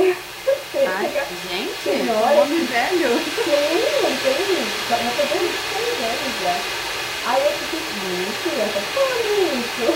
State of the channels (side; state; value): both; identical; correlation 1.00